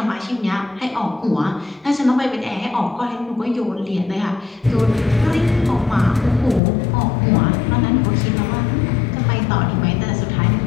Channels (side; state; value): right; drops out; at 6.6 s